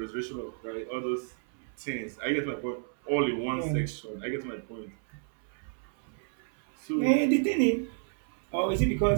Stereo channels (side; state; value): left; silent; 57 dB below the other